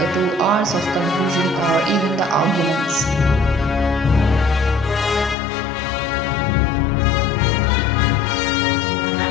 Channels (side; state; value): right; drops out; at 5.4 s